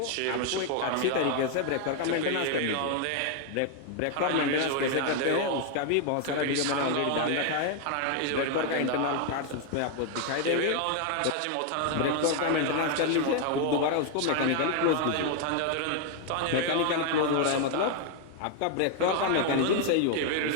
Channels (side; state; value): both; different; correlation 0.00